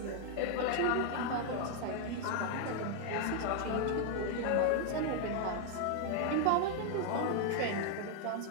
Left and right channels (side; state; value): both; different; correlation 0.00